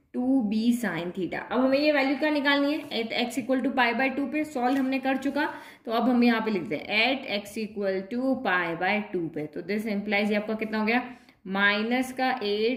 2b sine theta. अब हमें ये वैल्यू क्या निकालनी है, एट x इक्वल टू π/2 पे, सॉल्व हमने कर चुका। तो अब हम यहाँ पे लिखते हैं एट x इक्वल टू π/2 पे। तो दिस इम्प्लाइज ये आपका कितना हो गया, माइनस का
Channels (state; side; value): identical; both; correlation 1.00